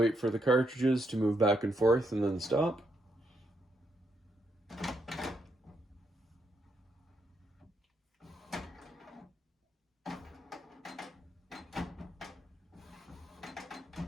for the cartridges to move back and forth and then stop.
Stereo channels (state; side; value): normal; both; correlation 0.78